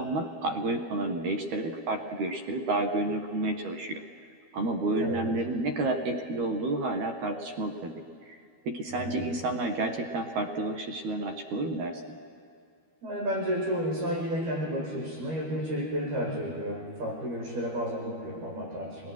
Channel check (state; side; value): late; left; 12 ms